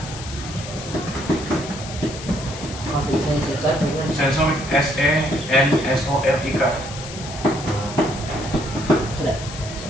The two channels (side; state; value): left; noise; hiss, 12 dB below the sound